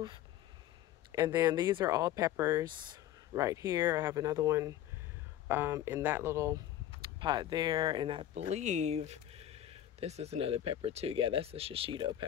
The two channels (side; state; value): right; quieter; 12.1 dB